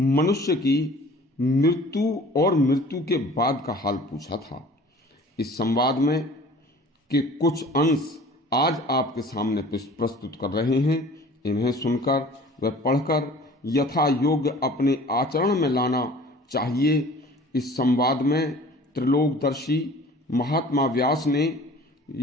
की मृत्यु और मृत्यु के बाद का हाल पूछा था। इस संवाद में के कुछ अंश आज आपके सामने प्रस्तुत कर रहे हैं। इन्हें सुनकर व पढ़कर यथा योग्य अपने आचरण में लाना चाहिए। इस संवाद में त्रिलोकदर्शी महात्मा व्यास ने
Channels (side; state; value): both; normal; correlation 0.47